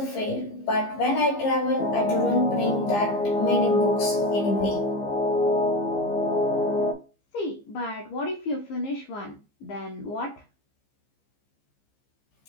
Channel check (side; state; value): right; late; 15 ms